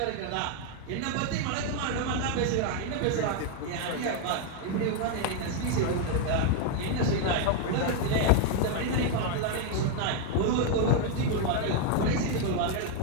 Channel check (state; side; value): different; both; correlation 0.01